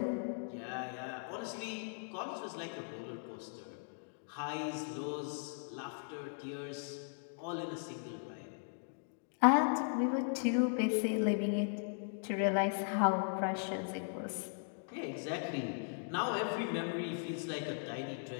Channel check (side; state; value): right; silent; digital silence